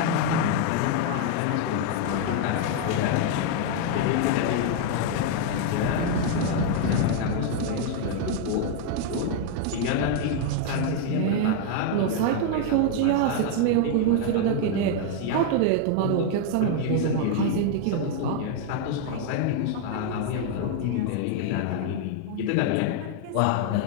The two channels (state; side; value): different; both; correlation 0.00